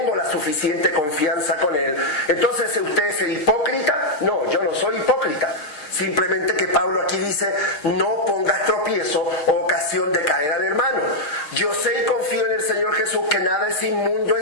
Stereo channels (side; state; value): right; late; 6.5 ms